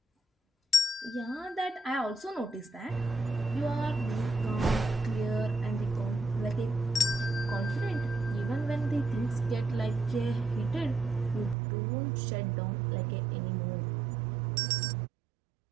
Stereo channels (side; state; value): left; drops out; at 11.6 s